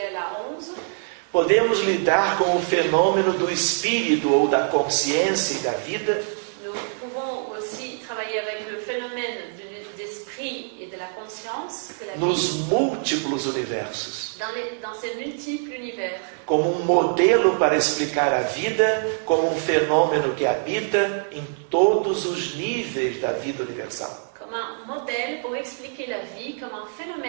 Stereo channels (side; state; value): left; silent; 62 dB below the other